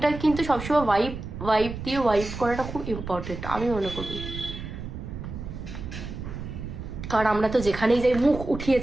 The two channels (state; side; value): noise; right; rumble, 8 dB below the sound